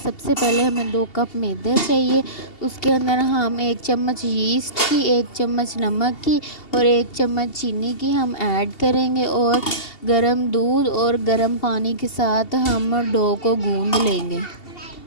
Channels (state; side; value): late; right; 2.7 ms